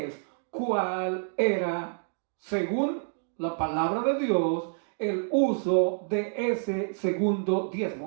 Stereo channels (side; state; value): left; silent; digital silence